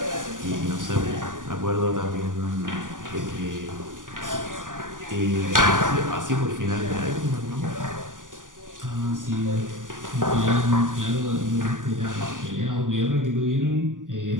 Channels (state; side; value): late; left; 0.88 ms